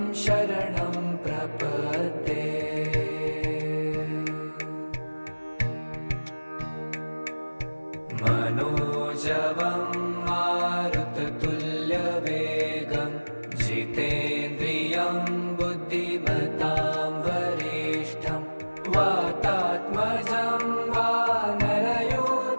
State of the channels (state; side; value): inverted; both; correlation -1.00